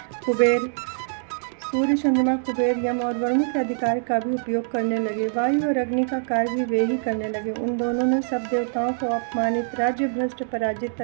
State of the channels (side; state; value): left; silent; digital silence